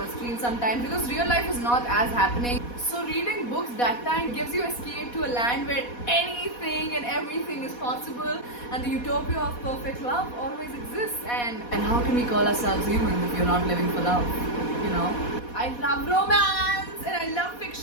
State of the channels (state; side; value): late; right; 4.1 ms